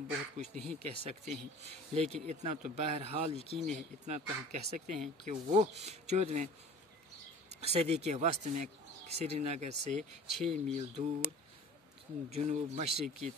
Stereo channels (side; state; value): both; normal; correlation 0.43